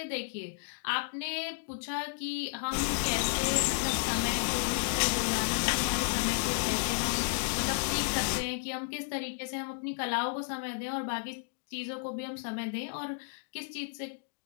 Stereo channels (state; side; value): silent; right; digital silence